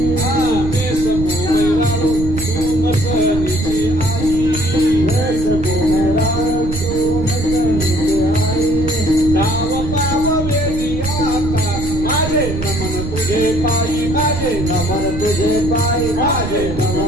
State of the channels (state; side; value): noise; right; rumble, 6 dB below the sound